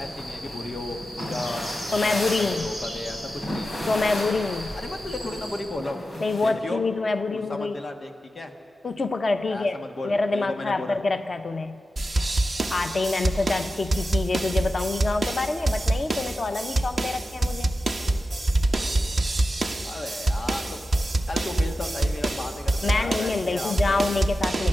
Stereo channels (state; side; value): normal; both; correlation 0.92